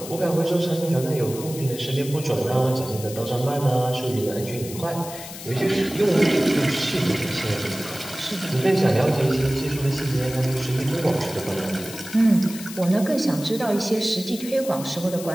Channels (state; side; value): noise; left; hiss, 12 dB below the sound